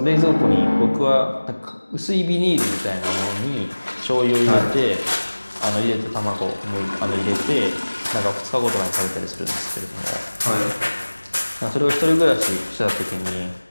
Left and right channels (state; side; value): inverted; both; correlation -1.00